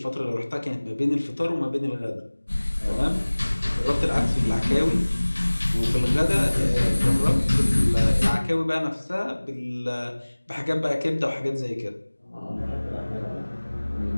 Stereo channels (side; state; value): both; inverted; correlation -1.00